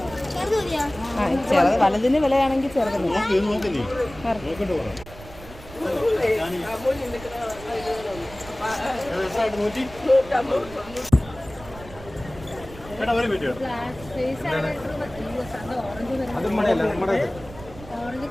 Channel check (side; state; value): right; noise; rumble, 17 dB below the sound